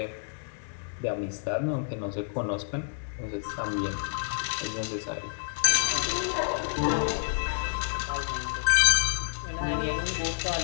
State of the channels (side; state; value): right; silent; digital silence